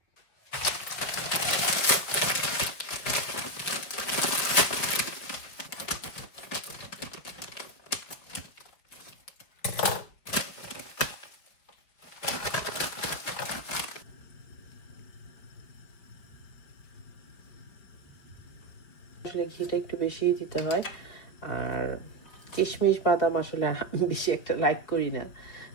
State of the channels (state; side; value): late; right; 4.8 ms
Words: আসলে ঘিটা একটু বেশিই দিতে হয়, আর কিশমিশ বাদাম আসলে বেশি একটা লাইক করি না,